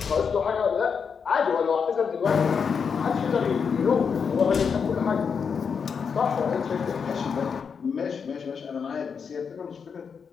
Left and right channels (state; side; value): quieter; right; 6.2 dB